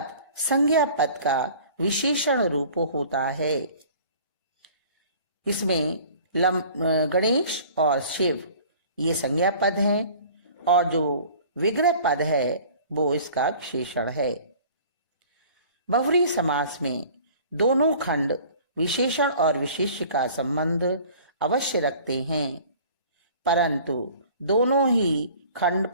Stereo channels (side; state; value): both; inverted; correlation -0.48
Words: संज्ञा पद का विशेषण रूप होता है। इसमें गणेश और शिव ये संज्ञा पद हैं और जो विग्रह पद है वो इसका विशेषण है। बहुव्रीहि समास में दोनों खंड विशेषण और विशेष्य का संबंध अवश्य रखते हैं, परंतु दोनों ही खंड